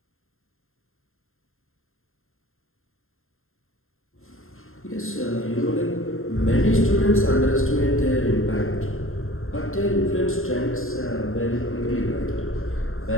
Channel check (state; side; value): late; right; 0.61 ms